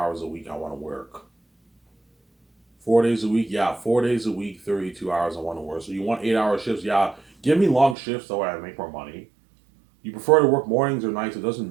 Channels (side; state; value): left; drops out; at 8.0 s